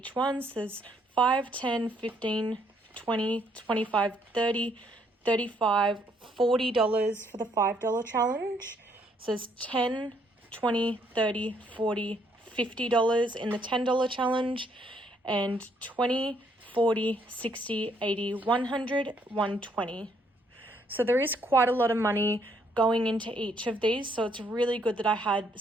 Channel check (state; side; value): normal; both; correlation 0.69